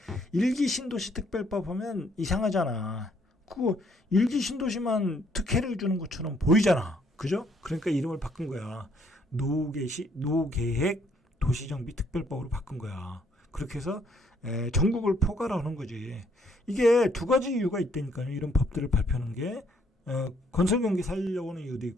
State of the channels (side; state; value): both; normal; correlation 0.67